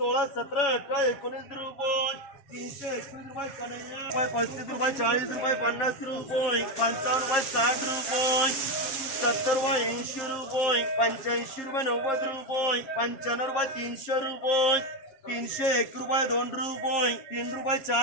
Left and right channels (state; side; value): late; right; 7.6 ms